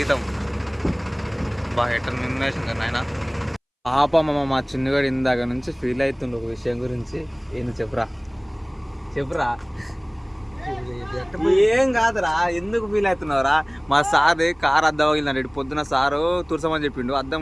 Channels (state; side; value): identical; both; correlation 1.00